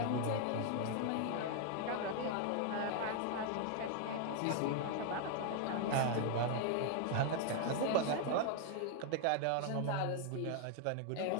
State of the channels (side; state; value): both; different; correlation 0.00